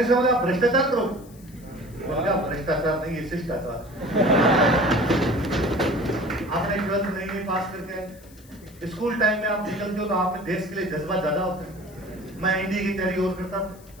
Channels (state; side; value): noise; left; hiss, 25 dB below the sound